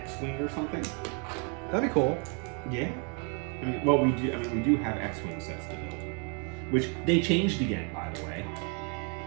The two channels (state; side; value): quieter; left; 37.7 dB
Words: or something. That'd be cool. Yeah. I mean, well, we do have X-Wing sets to build. Which they changed again, by the way.